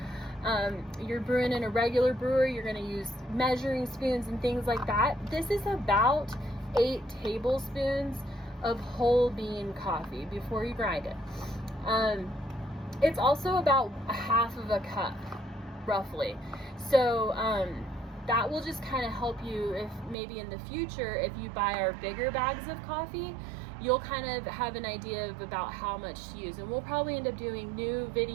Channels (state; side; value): drops out; left; at 20.2 s